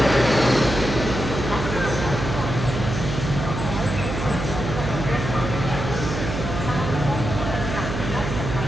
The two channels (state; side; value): noise; right; hum, 4 dB below the sound